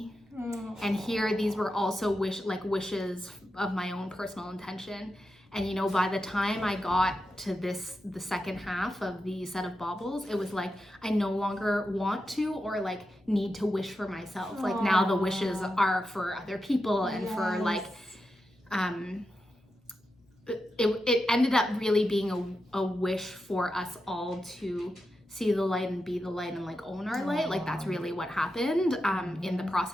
And here, these were also wishes of my own personal intention. And by the time I got to the second half of the set of baubles, it was like, I no longer want to or like need to wish for myself. Like now the wishes are for other people, and for like, it ended up really being a wish for us all to see the light and be the light and like own our light. Like that's really what happened in the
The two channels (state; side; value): normal; both; correlation 0.89